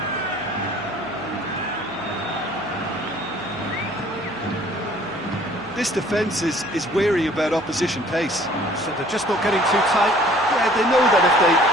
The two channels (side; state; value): right; noise; hum, 24 dB below the sound